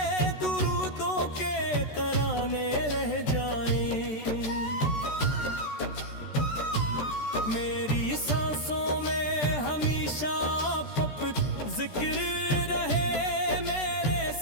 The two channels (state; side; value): late; right; 14 ms